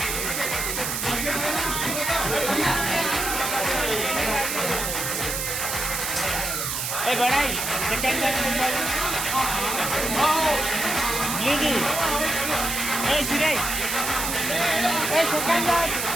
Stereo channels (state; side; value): noise; right; hiss, 2 dB below the sound